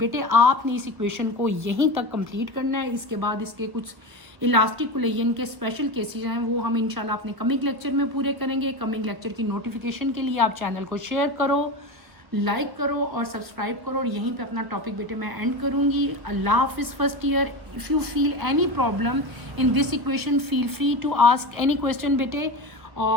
आपने इस इक्वेशन को यहीं तक कंप्लीट करना है। इसके बाद इसके कुछ इलास्टिक कोलिजन के स्पेशल केसेस हैं वो हम इंशाल्लाह अपने कमिंग लेक्चर में पूरे करेंगे। कमिंग लेक्चर की नोटिफिकेशन के लिए आप चैनल को शेयर करो, लाइक करो और सब्सक्राइब करो। और यहीं पे अपना टॉपिक बेटे मैं एंड करूँगी। अल्लाह हाफिज़ first year. If you feel any problem in this equation feel free to ask any question बेटे।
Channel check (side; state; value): left; late; 1.2 ms